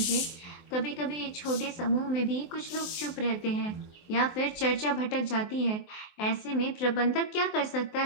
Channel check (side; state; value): right; late; 23 ms